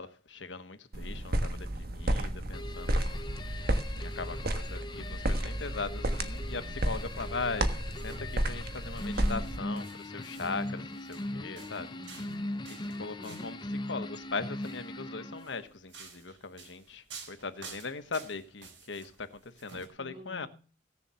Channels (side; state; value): both; normal; correlation 0.55